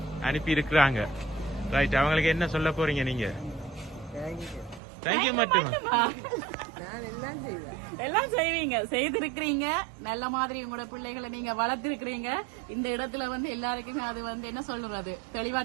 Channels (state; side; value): drops out; left; at 4.8 s